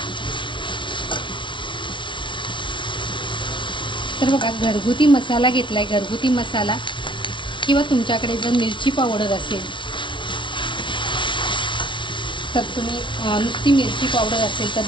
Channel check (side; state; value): right; late; 0.24 ms